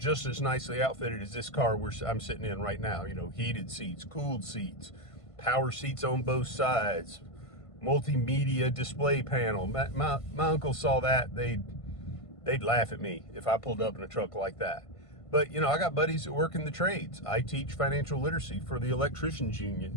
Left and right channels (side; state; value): right; late; 1.5 ms